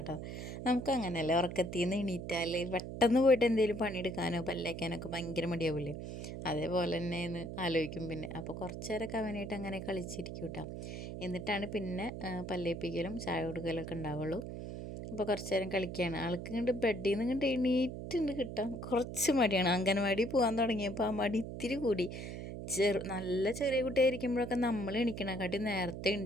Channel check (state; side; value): noise; right; hum, 7 dB below the sound